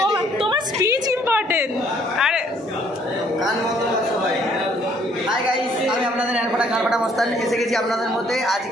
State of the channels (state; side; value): normal; both; correlation 0.63